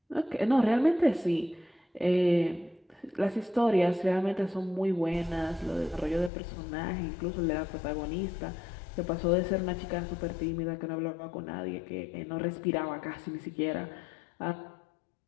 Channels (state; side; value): drops out; right; at 6.3 s